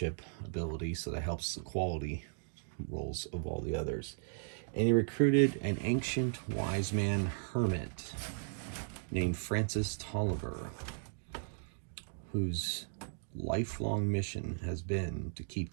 ability, so that helps the quality roles of all the others. And he recruited an ancient wise man hermit named Francis Tolliver, whose lifelong mission has been to keep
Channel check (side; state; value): left; silent; digital silence